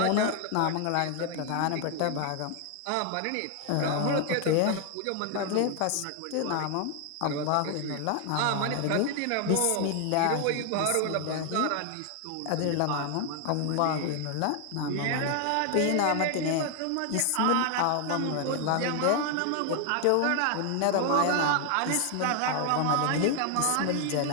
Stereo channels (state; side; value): different; both; correlation 0.00